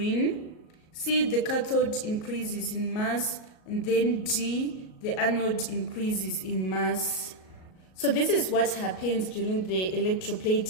C, the cathode increases in mass. And then D, the anode increases in mass. So this is what happens during the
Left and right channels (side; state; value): right; late; 38 ms